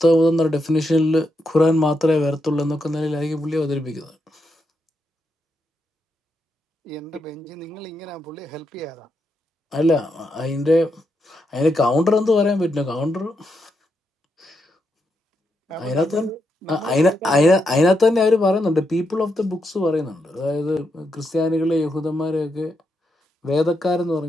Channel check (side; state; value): both; normal; correlation 0.82